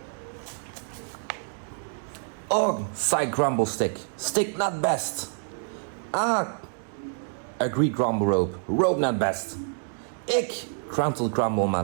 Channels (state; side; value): silent; left; 60 dB below the other